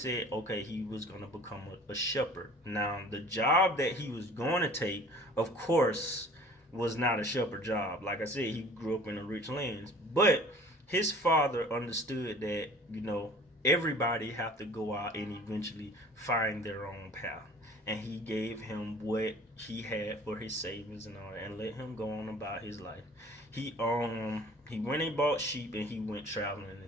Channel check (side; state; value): both; normal; correlation 0.48